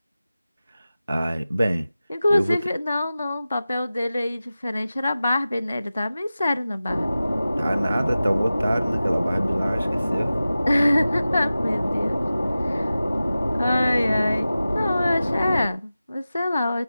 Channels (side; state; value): both; inverted; correlation -0.95